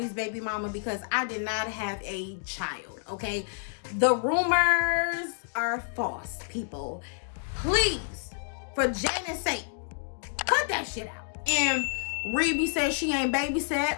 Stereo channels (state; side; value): silent; right; digital silence